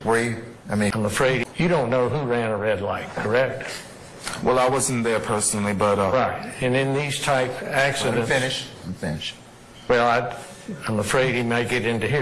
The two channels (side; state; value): both; identical; correlation 1.00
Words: I'm afraid you don't know who ran a red light, correct? Well, I wasn't there personally, but... Right. And in these type accidents... I'm finished. Well, I'm afraid he may get into